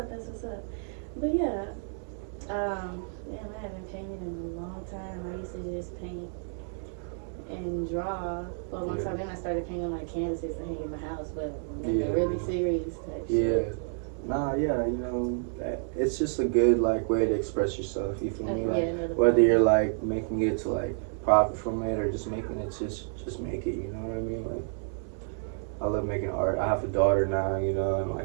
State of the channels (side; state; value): left; silent; 57 dB below the other